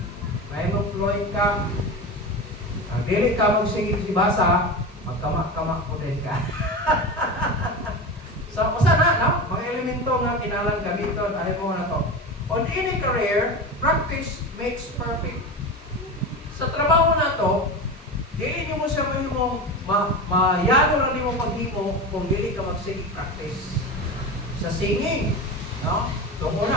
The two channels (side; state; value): both; normal; correlation 0.25